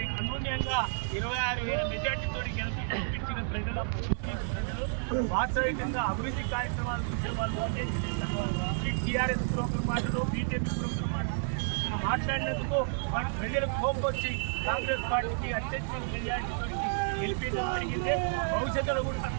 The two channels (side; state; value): left; silent; 57 dB below the other